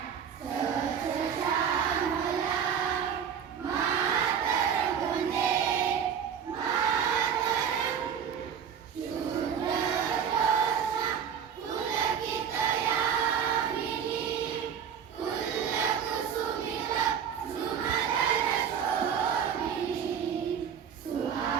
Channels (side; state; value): left; quieter; 7.9 dB